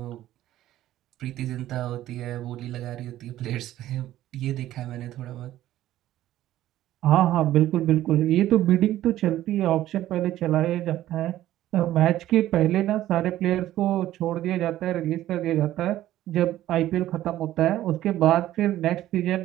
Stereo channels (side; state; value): left; quieter; 13.8 dB